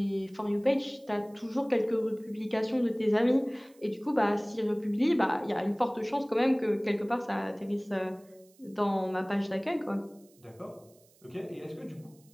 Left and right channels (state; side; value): noise; right; hiss, 30 dB below the sound